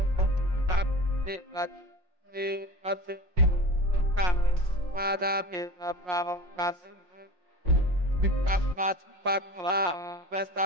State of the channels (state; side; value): late; left; 5.6 ms